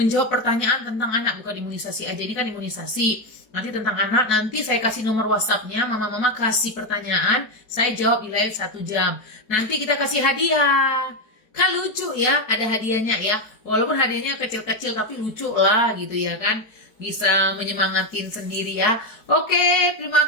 pertanyaan tentang anak, bukan imunisasi aja. Ini kan imunisasi. Nanti tentang anak, nanti saya kasih nomor WhatsApp-nya, mama-mama kasih pertanyaan, saya jawab di live 1 jam. Nanti kita kasih hadiah. Kan lucu ya, ada hadiahnya ya. Walaupun hadiahnya kecil-kecil tapi lucu lah gitu ya kan. Bisa menyemangatin sendiri ya. Oke, terima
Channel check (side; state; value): right; late; 4.7 ms